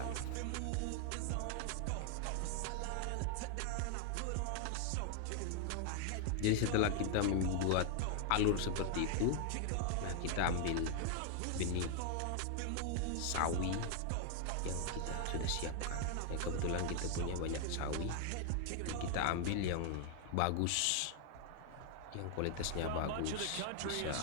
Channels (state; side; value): different; both; correlation 0.00